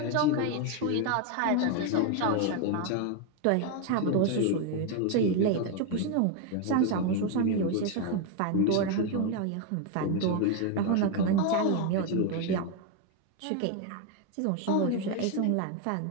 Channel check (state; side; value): different; both; correlation 0.01